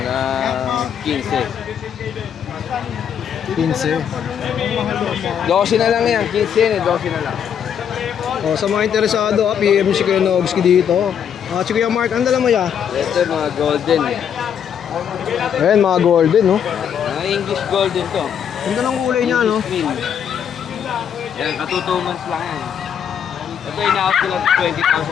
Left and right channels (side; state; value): right; quieter; 8.3 dB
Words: 15. 15. 12 na lang yan, 15 yan eh, 12 na lang. Oh, sa mga interesado, PM si Kuya Nogski dito. Si Kuya Mark, ang dala mo ya? Ito mga golden eh. Ayan, mga golden no. Mga English golden to. Ganda ng kulay niya no. English mean. Yan, katutumans lang yan. Ito ina-out ko lang